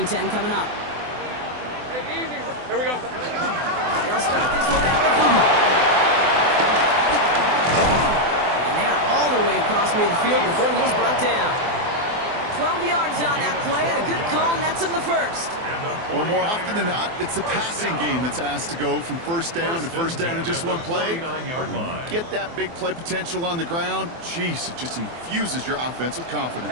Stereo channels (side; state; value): left; late; 24 ms